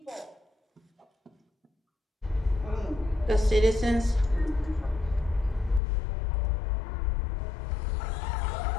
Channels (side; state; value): right; drops out; at 5.8 s